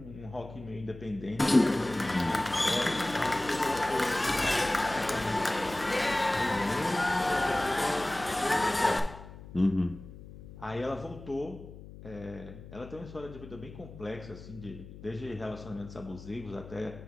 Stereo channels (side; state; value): left; noise; hum, 15 dB below the sound